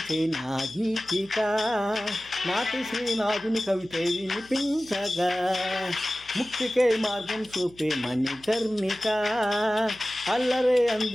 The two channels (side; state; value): left; noise; hum, 25 dB below the sound